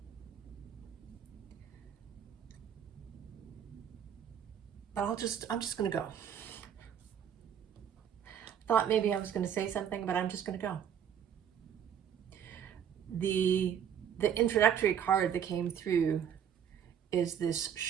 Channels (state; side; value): quieter; left; 8.7 dB